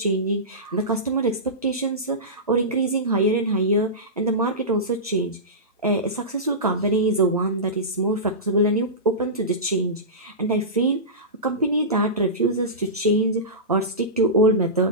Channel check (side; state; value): both; normal; correlation -0.18